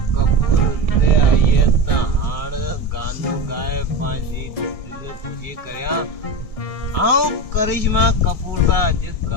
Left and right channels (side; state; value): right; late; 1.6 ms